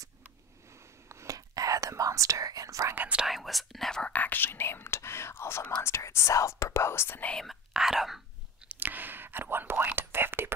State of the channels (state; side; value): normal; both; correlation 0.33